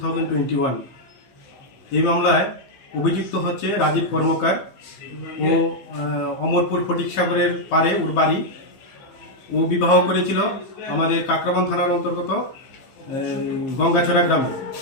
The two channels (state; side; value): late; right; 15 ms